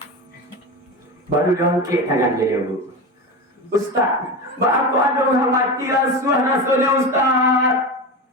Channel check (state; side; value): normal; both; correlation 0.23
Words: Baru diangkat tangan dia, Bu. Ustaz, aku ada orang mati rasulnya Ustaz.